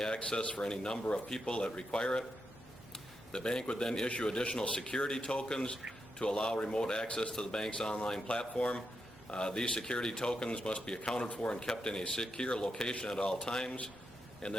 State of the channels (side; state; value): both; normal; correlation 0.84